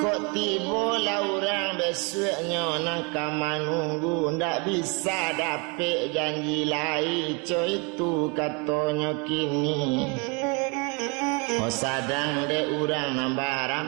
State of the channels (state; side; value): quieter; left; 31.9 dB